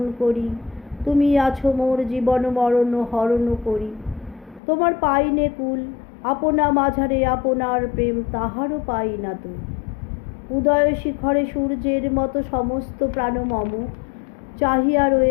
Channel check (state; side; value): drops out; right; at 4.6 s